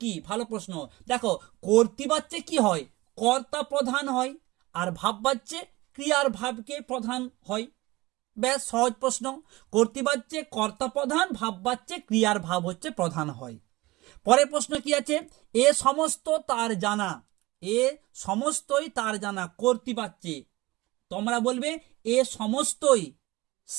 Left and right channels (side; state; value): left; quieter; 20.7 dB